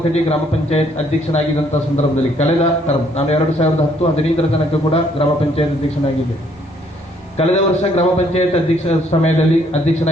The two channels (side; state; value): both; normal; correlation 0.66